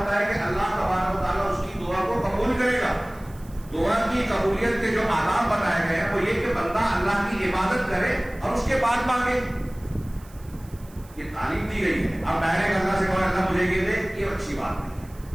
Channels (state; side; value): noise; right; hiss, 25 dB below the sound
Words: ہے کہ اللہ تبارک و تعالیٰ اس کی دعا کو قبول کرے گا۔ دعا کی قبولیت کے جو آداب بتائے گئے ہیں وہ یہ کہ بندہ اللہ کی عبادت کرے اور اس کے بعد مانگے۔ یہ تعلیم دی گئی ہے۔ اب ڈائریکٹ اللہ سے کہو اللہ مجھے یہ دے، یہ اچھی بات نہیں